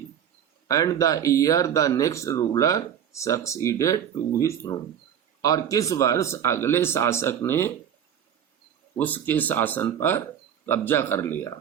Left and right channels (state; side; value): quieter; left; 9.1 dB